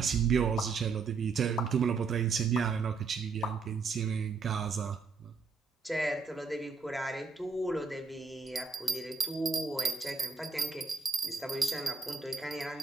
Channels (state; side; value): quieter; left; 4.7 dB